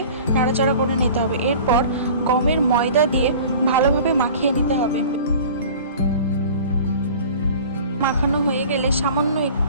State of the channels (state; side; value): inverted; both; correlation -0.43